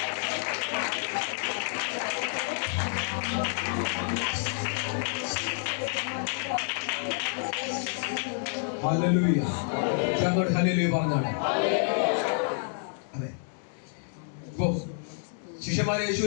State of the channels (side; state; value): right; silent; 59 dB below the other